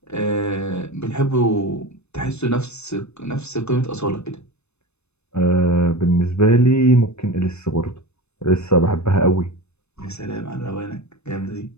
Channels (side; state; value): right; late; 0.81 ms